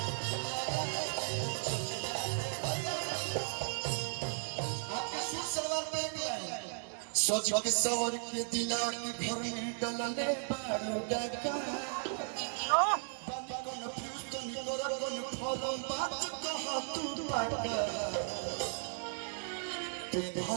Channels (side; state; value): left; silent; digital silence